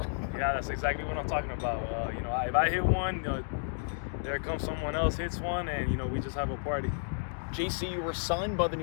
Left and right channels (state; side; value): silent; right; digital silence